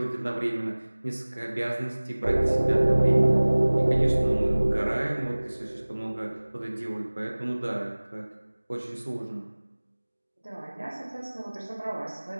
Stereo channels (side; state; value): both; inverted; correlation -1.00